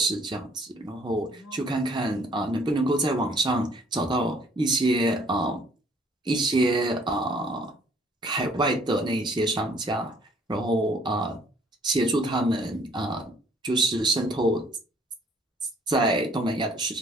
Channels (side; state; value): both; normal; correlation 0.60